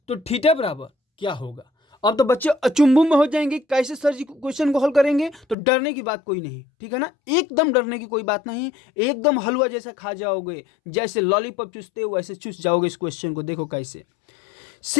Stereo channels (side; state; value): right; drops out; at 5.6 s